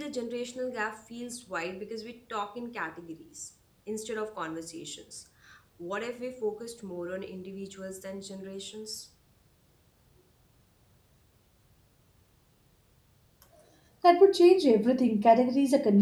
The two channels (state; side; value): identical; both; correlation 1.00